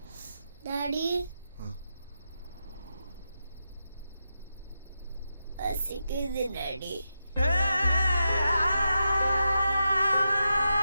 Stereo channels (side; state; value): both; inverted; correlation -0.88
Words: Daddy. பசிக்குது Daddy.